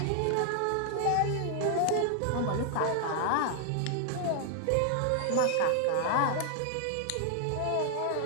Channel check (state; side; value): different; both; correlation 0.00